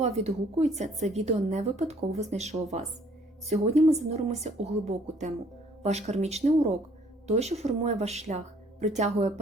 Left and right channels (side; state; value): both; normal; correlation 0.60